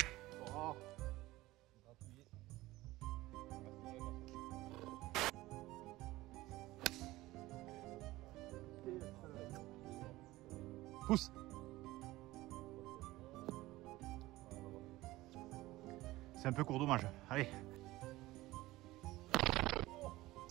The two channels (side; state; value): left; quieter; 18.2 dB